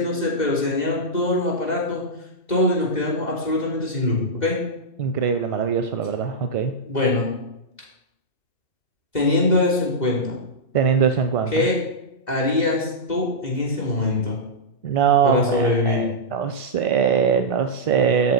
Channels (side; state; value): right; late; 2.0 ms